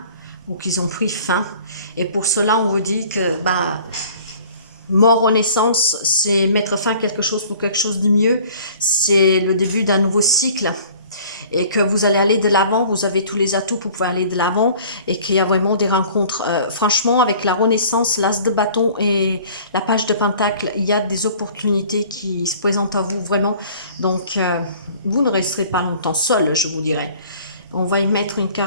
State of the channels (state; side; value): inverted; both; correlation -0.50